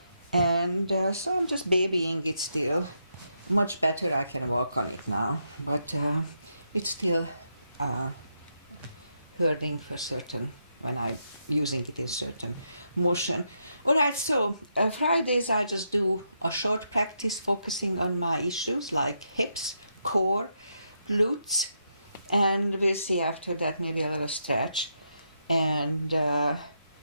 and so I'm just babying it still. Much better, I can walk on it now, but it's still hurting for certain when I'm using it in certain motion. Alright, so Fridays I just do a short practice focusing on my issues like hips, core, glutes, and we'll see after that maybe a little stretch. And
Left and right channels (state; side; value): inverted; both; correlation -0.81